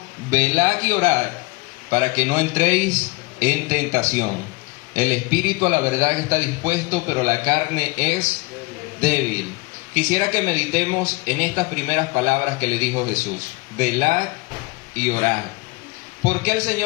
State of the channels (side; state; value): right; quieter; 25.0 dB